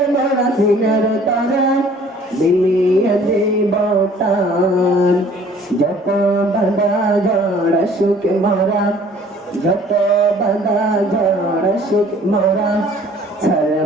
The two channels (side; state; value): both; normal; correlation 0.54